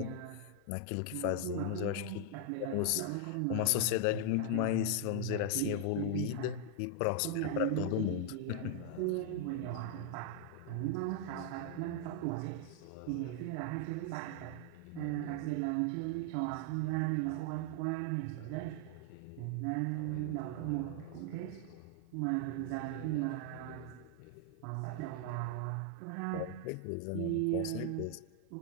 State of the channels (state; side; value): different; both; correlation 0.00